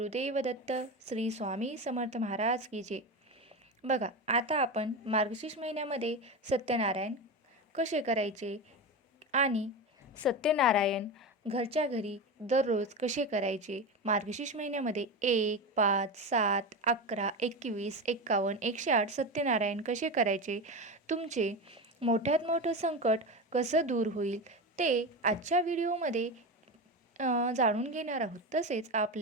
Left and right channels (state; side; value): normal; both; correlation 0.21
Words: दत्त श्री स्वामी समर्थ महाराज की जय. बघा, आता आपण मार्गशीर्ष महिन्यामध्ये सत्यनारायण कसे करायचे आणि सत्यनारायण घरच्या घरी दररोज कसे करायचे, मार्गशीर्ष महिन्यामध्ये 1, 5, 7, 11, 21, 51, 108 सत्यनारायण कसे करायचे, तुमचे मोठ्यात मोठं संकट कसं दूर होईल ते आजच्या व्हिडिओमध्ये जाणून घेणार आहोत. तसेच